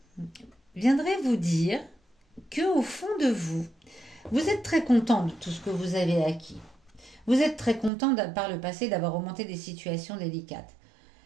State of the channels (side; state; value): left; drops out; at 7.9 s